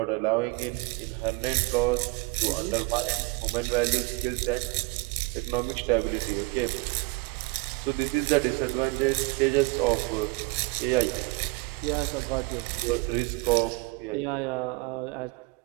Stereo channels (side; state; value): left; quieter; 26.1 dB